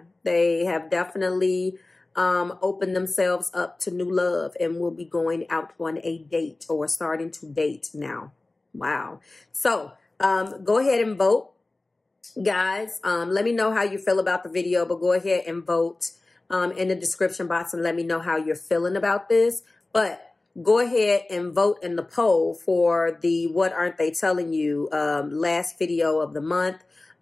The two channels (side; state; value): right; quieter; 3.1 dB